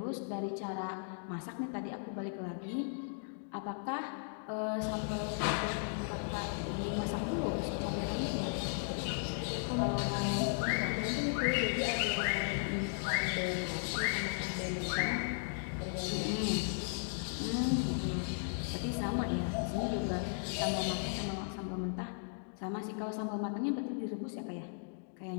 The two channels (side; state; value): right; silent; digital silence